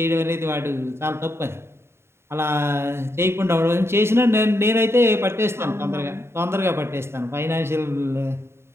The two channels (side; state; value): left; late; 0.12 ms